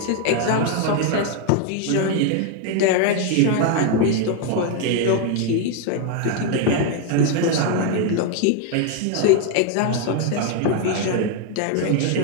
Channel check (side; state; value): both; different; correlation 0.01